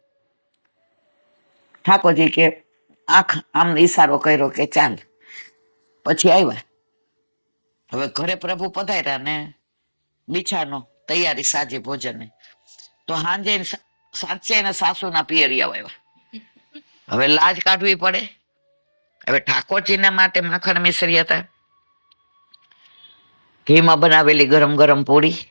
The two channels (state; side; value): inverted; both; correlation -1.00